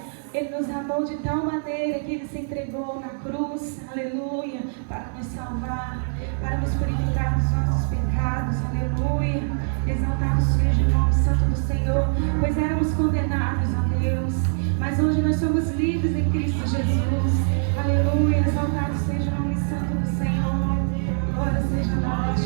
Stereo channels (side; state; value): left; silent; digital silence